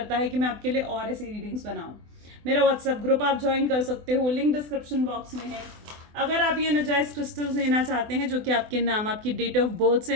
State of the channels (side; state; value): left; late; 24 ms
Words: है कि मैं आपके लिए और ऐसी रीडिंग्स बनाऊँ। मेरा व्हाट्सएप ग्रुप आप ज्वाइन कर सकते हो, लिंक डिस्क्रिप्शन बॉक्स में है। अगर आप ये एनर्जाइज क्रिस्टल्स लेना चाहते हैं जो कि आपके नाम, आपकी डेट ऑफ बर्थ से